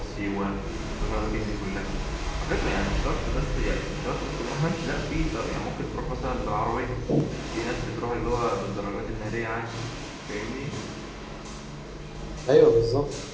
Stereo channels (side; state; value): both; identical; correlation 1.00